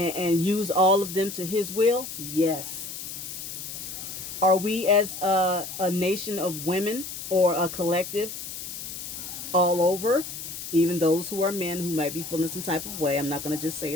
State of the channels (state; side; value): noise; left; hiss, 8 dB below the sound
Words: used all of them to his will? Yes. Are we as a nation of women or a collective all over, even those who are men who might be feeling some type of way? I'm not going to just say